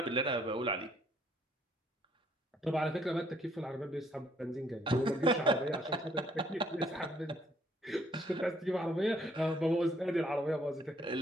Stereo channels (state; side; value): normal; both; correlation 0.66